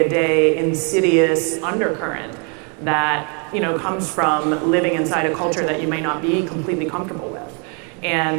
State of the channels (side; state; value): left; quieter; 36.6 dB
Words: insidious undercurrent that, you know, comes from living inside a culture that you may not be completely comfortable with.